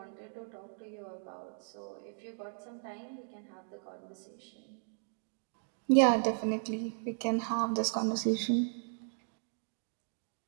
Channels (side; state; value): left; silent; digital silence